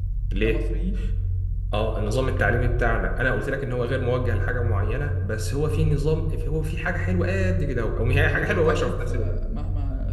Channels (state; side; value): identical; both; correlation 1.00